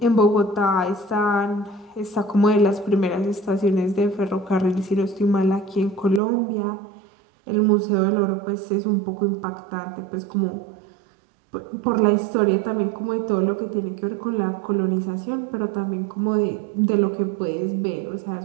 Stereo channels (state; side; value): drops out; left; at 6.2 s